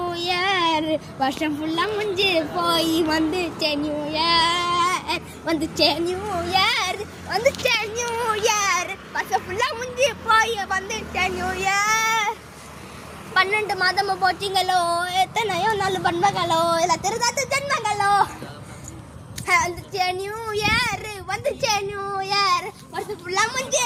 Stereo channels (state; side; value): identical; both; correlation 1.00